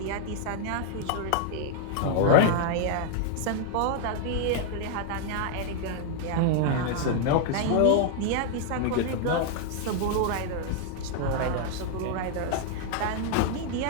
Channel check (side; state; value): both; different; correlation 0.00